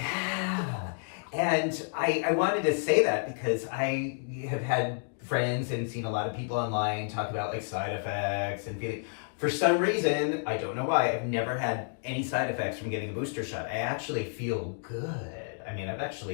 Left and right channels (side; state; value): right; silent; digital silence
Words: And I wanted to say that because I have had friends and seen a lot of people online talk about like side effects and feeling. For some reason, I don't know why, I've never had any side effects from getting a booster shot. I actually feel good. I mean, I've